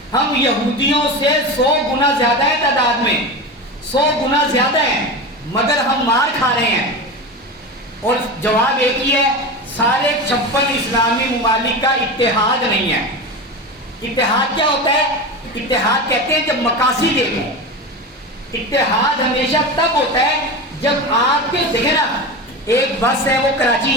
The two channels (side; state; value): both; normal; correlation 0.25